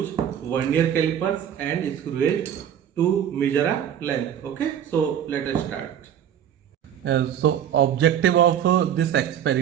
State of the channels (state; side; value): quieter; left; 9.6 dB